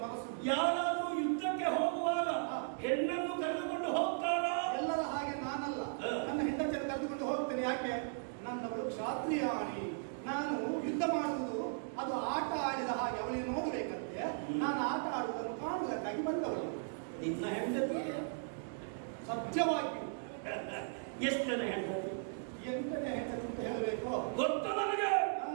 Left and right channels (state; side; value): silent; left; digital silence